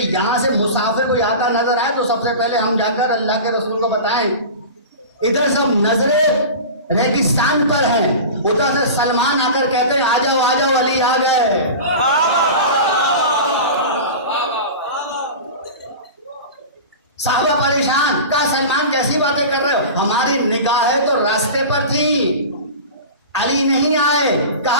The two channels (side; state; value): both; inverted; correlation -0.31